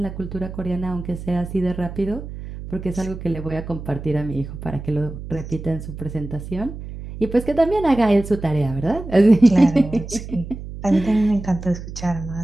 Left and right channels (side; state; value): right; noise; hum, 10 dB below the sound